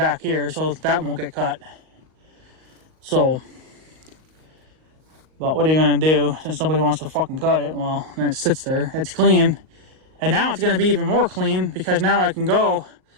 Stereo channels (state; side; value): late; left; 38 ms